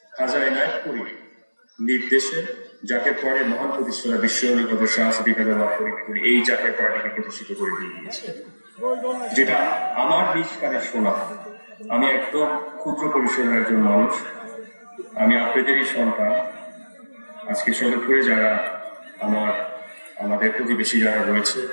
খাজা এনায়েতপুরী নির্দেশে জাকের পরে মহান প্রতিষ্ঠাতা বিশ্ব অলিগত শাহী এই জাকের পরটাকে প্রতিষ্ঠিত করে দিয়ে দিয়েছে, যেটা আমার নিজ কানে শোনা। আমি একদম ক্ষুদ্র পরিসরের একজন মানুষ, আমি আপনাদেরই সন্তান। আজকে সদরপুরে যারা আমাদের প্রতিবেশী যারা রয়েছে,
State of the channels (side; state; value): both; inverted; correlation -1.00